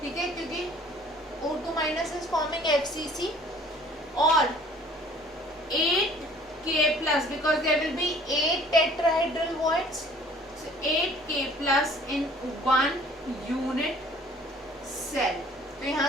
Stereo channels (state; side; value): normal; both; correlation 0.53